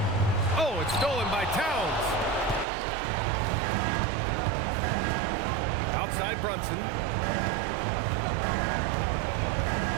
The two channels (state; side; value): drops out; left; at 2.7 s